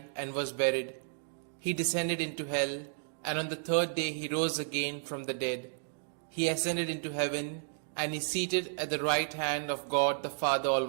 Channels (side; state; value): left; silent; digital silence